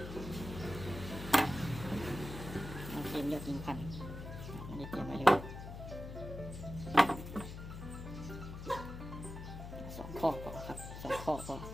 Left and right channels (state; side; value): noise; left; hum, 9 dB below the sound